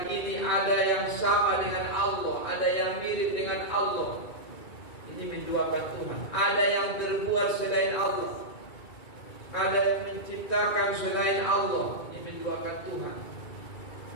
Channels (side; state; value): right; late; 2.3 ms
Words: ada yang sama dengan Allah, ada yang mirip dengan Allah. Ini menduakan Tuhan. Ada yang terbuat selain Allah, ada yang menciptakan selain Allah. Ini menduakan Tuhan.